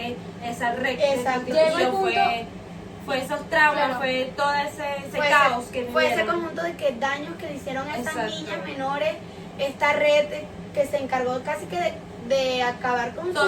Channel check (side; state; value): both; identical; correlation 1.00